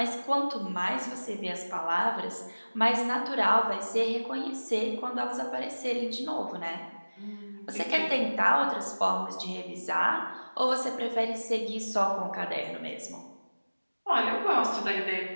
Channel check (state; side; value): inverted; both; correlation -1.00